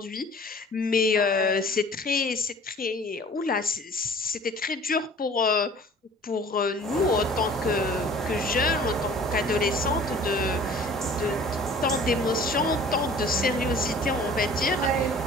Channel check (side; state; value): both; normal; correlation 0.48